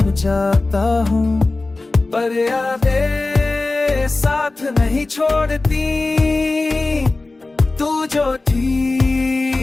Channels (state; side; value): quieter; right; 3.3 dB